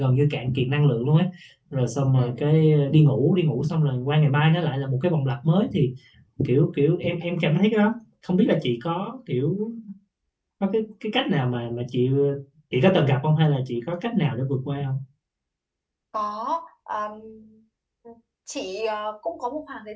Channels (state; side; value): identical; both; correlation 1.00